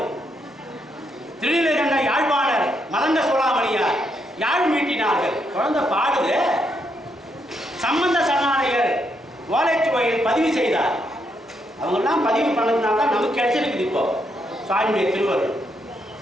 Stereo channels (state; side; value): normal; both; correlation 0.78